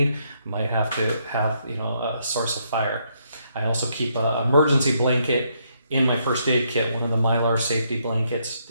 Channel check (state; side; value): inverted; both; correlation -0.74